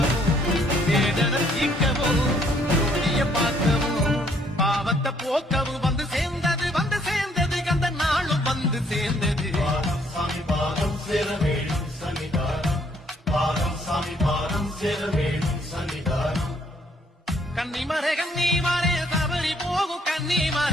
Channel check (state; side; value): normal; both; correlation 0.66